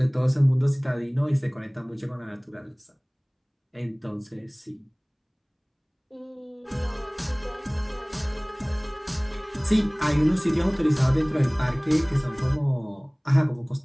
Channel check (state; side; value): identical; both; correlation 1.00